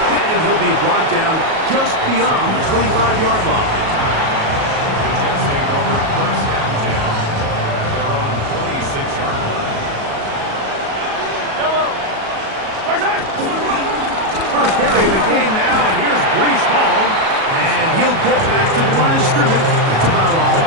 And he'll be brought down just beyond the 25-yard line. The Jets take over first and 10 at their own 26-yard line. First carry of the game now, and here's Breece Hall. And he'll get back to the line of scrimmage. That's about all.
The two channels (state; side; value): late; left; 37 ms